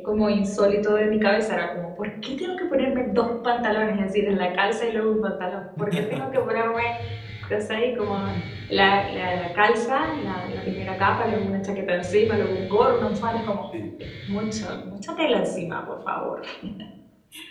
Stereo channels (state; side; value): identical; both; correlation 1.00